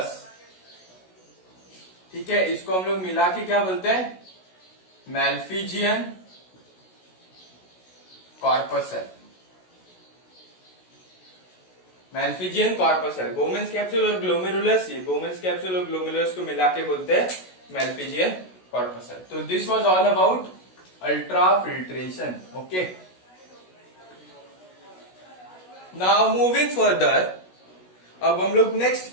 ठीक है, इसको हम लोग मिला के क्या बोलते हैं, Malpighian corpuscle. Malpighian corpuscle, बोमेंस capsule और ग्लोमेरुलस, ये बोमेंस कैप्सूल और ग्लोमेरुलस को मिला के बोलते हैं मैल्फिजियन कॉर्पसल। तो this was all about ultra filtration. Okay, now moving further, अब हम लोग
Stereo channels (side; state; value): right; late; 16 ms